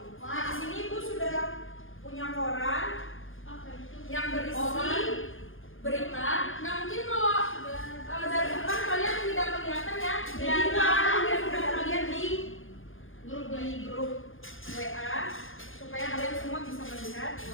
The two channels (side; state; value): right; late; 0.58 ms